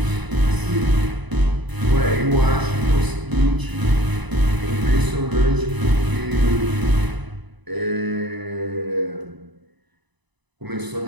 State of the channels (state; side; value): late; left; 1.0 ms